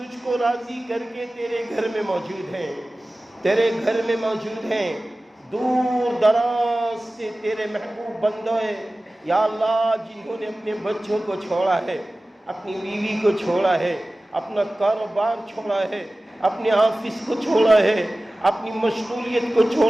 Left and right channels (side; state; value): both; normal; correlation 0.97